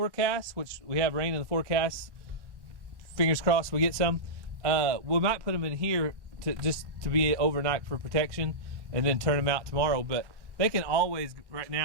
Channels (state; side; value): late; left; 1.1 ms